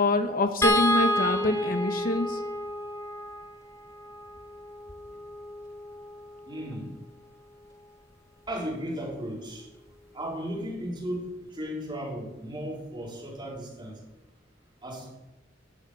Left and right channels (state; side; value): normal; both; correlation 0.47